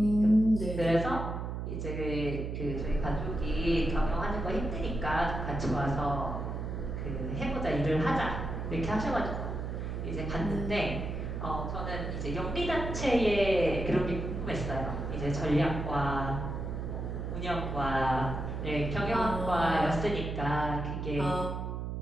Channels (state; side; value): noise; right; hum, 4 dB below the sound